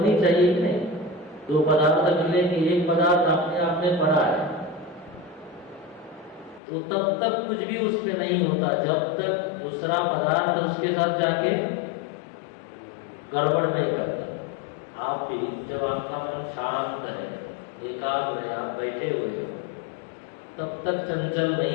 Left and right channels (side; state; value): right; drops out; at 6.6 s